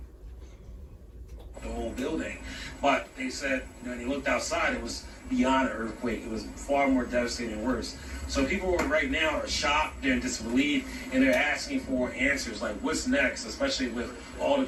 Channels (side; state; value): both; identical; correlation 1.00